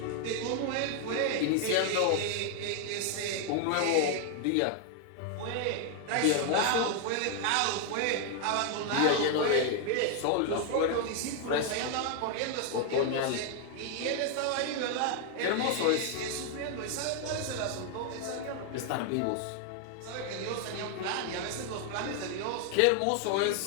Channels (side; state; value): both; different; correlation 0.00